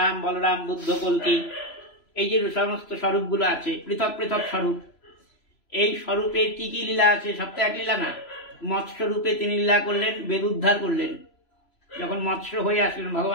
বলরাম বুদ্ধ কল্কি, এই যে সমস্ত স্বরূপগুলো আছে পৃথক পৃথক স্বরূপ, এই স্বরূপের কি কি লীলা আছে, সব তো এক লীলা না। মৎস্য রূপে তিনি লীলা করলেন, বেদ উদ্ধার করলেন। যখন মৎস্য হয়ে আসলেন,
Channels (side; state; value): right; late; 3.0 ms